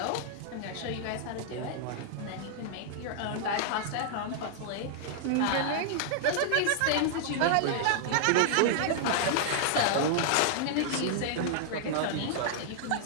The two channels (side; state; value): both; different; correlation -0.01